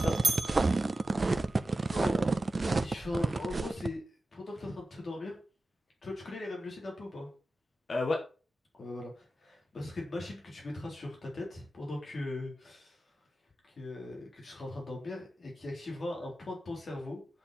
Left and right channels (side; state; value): both; normal; correlation 0.93